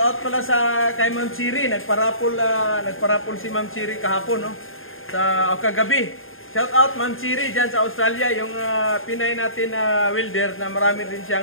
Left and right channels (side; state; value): right; late; 0.60 ms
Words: out pala kay Ma'am Chiri. Nagparapol si Ma'am Chiri kahapon, no? Kagabi. Shout out Ma'am Chiri dyan sa Australia. Yung Pinay natin na welder na marami din